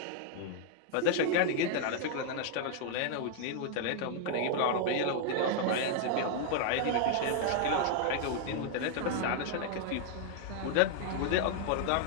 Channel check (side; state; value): both; different; correlation 0.00